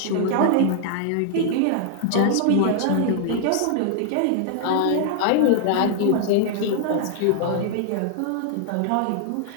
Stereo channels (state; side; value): different; both; correlation 0.00